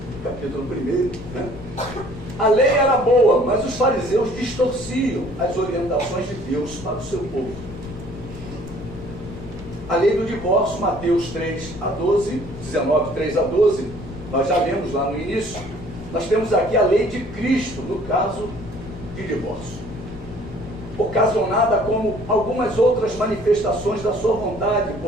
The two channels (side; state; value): left; noise; rumble, 13 dB below the sound